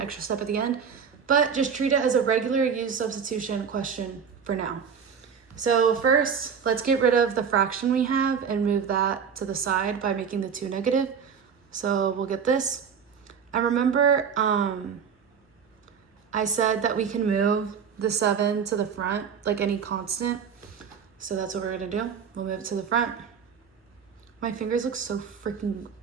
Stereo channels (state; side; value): quieter; left; 6.8 dB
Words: step at the end, but just treat it as a regular use substitution question for now. So first, let's get rid of the fraction we have and move that to the side by making the 2 negative. So we'll get this. And remember, I said that we can move the 7 to the front, like any constant. So that's what we're gonna do. We'll move it to the front. My fingers look so freaking